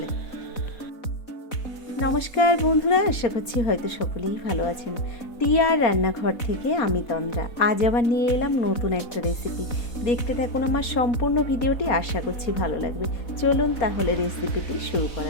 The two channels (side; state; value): right; late; 4.3 ms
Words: নমস্কার বন্ধুরা, আশা করছি হয়তো সকলেই ভালো আছেন। টিয়ার রান্নাঘর থেকে আমি তন্দ্রা। আজ আবার নিয়ে এলাম নতুন একটা রেসিপি। দেখতে থাকুন আমার সম্পূর্ণ ভিডিওটি, আশা করছি ভালো লাগবে। চলুন তাহলে রেসিপিটি শুরু